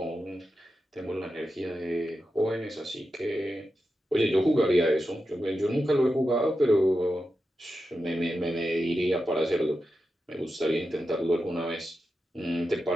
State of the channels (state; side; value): normal; both; correlation 0.90